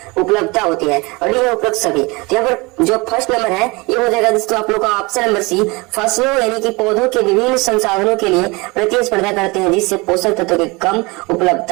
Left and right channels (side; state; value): left; quieter; 25.5 dB